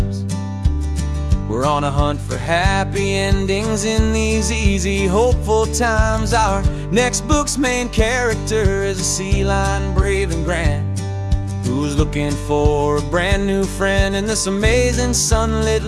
We're on a hunt for happy endings in these easy, hopeful times. Our next book's main character is a sea lion, brave and grand, who's looking for a brand new friend in this amazing sunlit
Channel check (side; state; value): both; identical; correlation 1.00